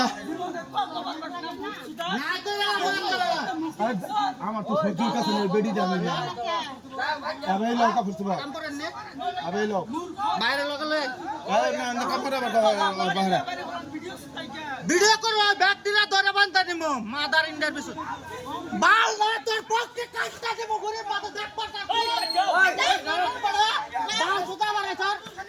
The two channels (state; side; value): identical; both; correlation 1.00